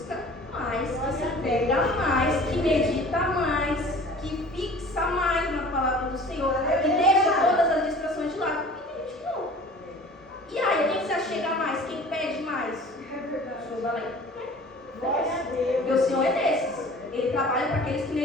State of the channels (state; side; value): normal; both; correlation 0.45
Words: mais, que se apega mais, que medita mais, que fixa mais na palavra do Senhor, que deixa todas as distrações de lado. E tem gente que não. E aí, quem se achega mais? Quem pede mais? O Senhor vai lá e porque o Senhor é desses. Ele trabalha para aqueles que